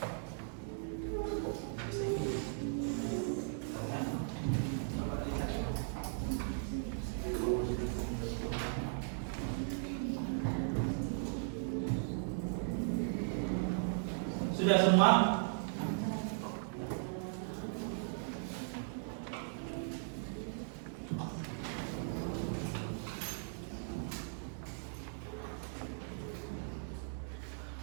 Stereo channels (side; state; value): left; silent; digital silence